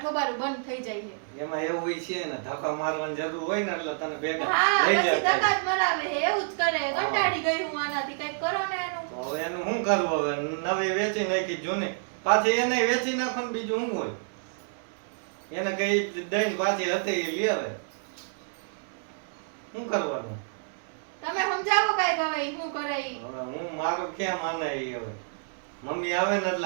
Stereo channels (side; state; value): left; silent; 59 dB below the other